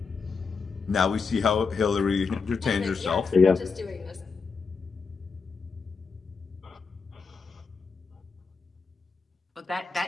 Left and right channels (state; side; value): quieter; right; 5.0 dB